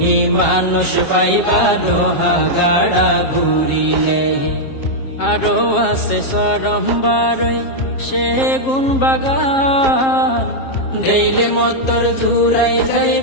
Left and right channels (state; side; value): late; right; 7.5 ms